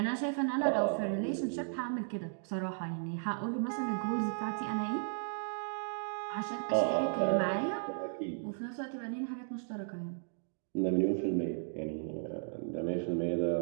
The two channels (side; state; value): left; silent; digital silence